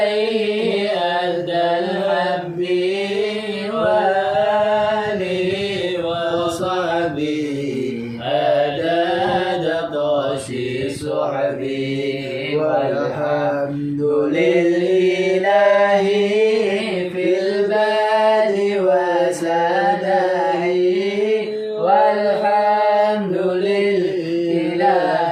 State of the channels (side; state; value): both; identical; correlation 1.00